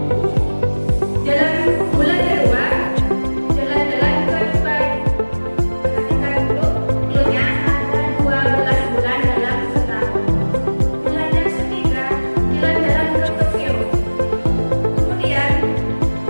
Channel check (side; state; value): both; inverted; correlation -1.00